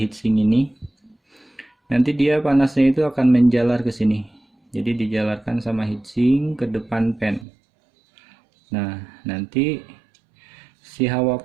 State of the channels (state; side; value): drops out; left; at 7.5 s